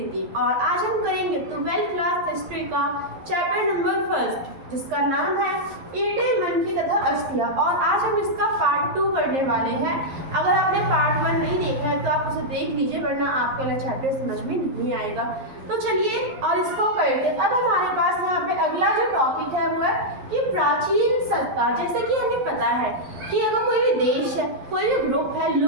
और आज हम करेंगे 12th क्लास हिस्ट्री का चैप्टर नंबर 1 जिसका नाम है ईंटे, मनकी तथा अस्थियां। और आज हम इसका पार्ट 2 करने वाले हैं। अगर आपने पार्ट 1 नहीं देखा है तो आप उसे देख लीजिए, वरना आपका वाला चैप्टर समझ में नहीं आएगा। तो चलिए और इसको करते। अब हमारे पास यहाँ पे अगला जो टॉपिक है वो है कि प्राचीन सत्ता। जैसे कि हमें पता है कि अगर कोई भी देश है, कोई भी ग्रुप है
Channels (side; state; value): left; late; 11 ms